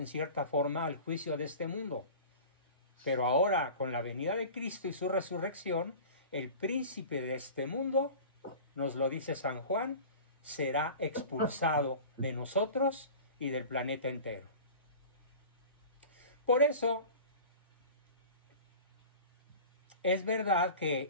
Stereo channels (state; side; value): inverted; both; correlation -0.38